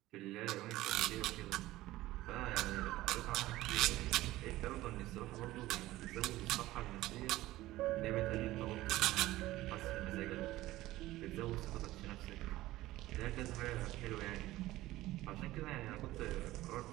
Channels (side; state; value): left; quieter; 16.8 dB